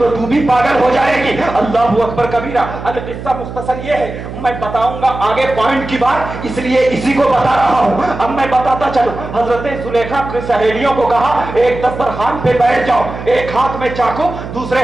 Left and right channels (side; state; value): right; noise; hum, 10 dB below the sound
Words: تو بھی پاگل ہو جائے گی. اللہ اکبر کبیرہ. القصہ مختصر یہ ہے, میں بتاؤں گا آگے پوائنٹ کی بات, اس لیے اسی کو بتا رہا ہوں. اب میں بتاتا چلوں. حضرت زلیخا کی سہیلیوں کو کہا ایک دسترخوان پہ بیٹھ جاؤ, ایک ہاتھ میں چاقو